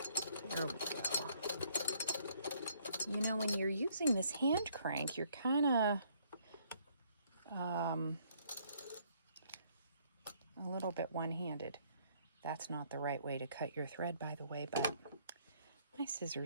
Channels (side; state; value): both; inverted; correlation -0.65